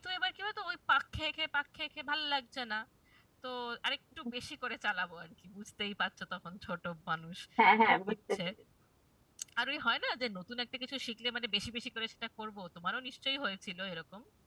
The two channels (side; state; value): both; identical; correlation 1.00